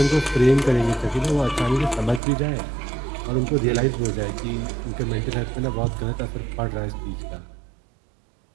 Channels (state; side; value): drops out; left; at 2.2 s